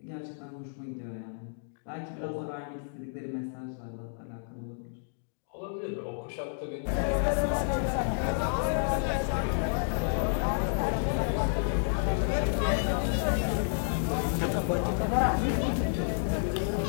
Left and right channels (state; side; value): silent; right; digital silence